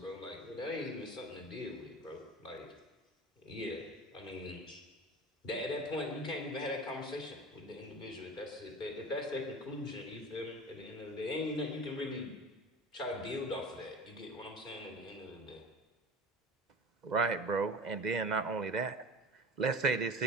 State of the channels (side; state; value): both; normal; correlation 0.35